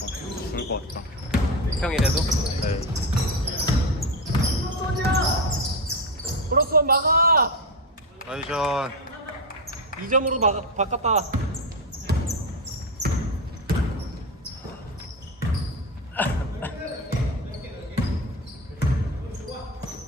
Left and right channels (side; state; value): both; normal; correlation 0.15